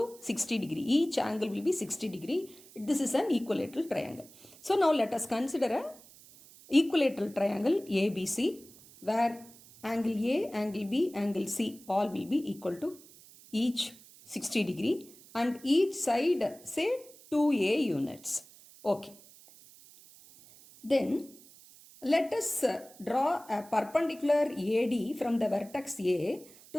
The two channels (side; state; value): right; noise; hiss, 22 dB below the sound